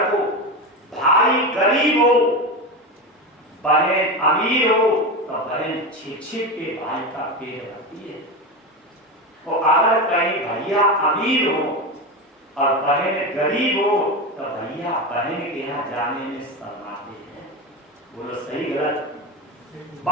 को, भाई गरीब हो बहन अमीर हो तो बहन छिप-छिप के भाई का पेट भरती है। और अगर कहीं भैया अमीर हो और बहन गरीब हो तो भैया बहन के यहाँ जाने में शर्माते हैं। बोलो सही गलत।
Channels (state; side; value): normal; both; correlation 0.19